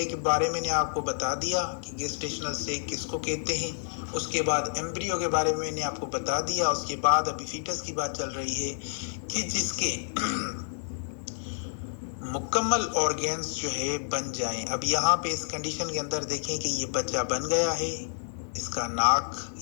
کے بارے میں نے آپ کو بتا دیا کہ گیسٹیشنل سیک کس کو کہتے ہیں. اس کے بعد ایمبریو کے بارے میں نے آپ کو بتا دیا. اس کے بعد ابھی فیٹس کی بات چل رہی ہے کہ جس کے مکمل آرگنز جو ہے بن جائیں. اب یہاں پہ اس کنڈیشن کے اندر دیکھیں کہ یہ بچہ بن گیا ہے. اس کا ناک،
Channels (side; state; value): right; silent; digital silence